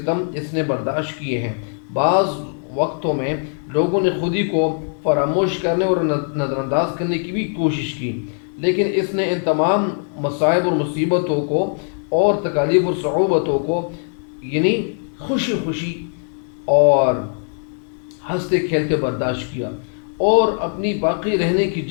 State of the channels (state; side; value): silent; right; 59 dB below the other